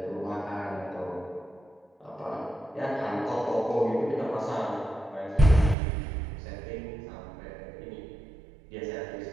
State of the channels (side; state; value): left; drops out; at 5.8 s